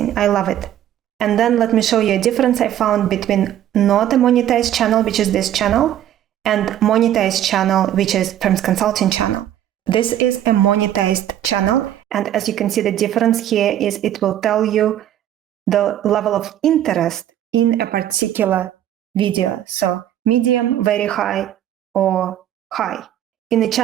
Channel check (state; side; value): quieter; left; 11.5 dB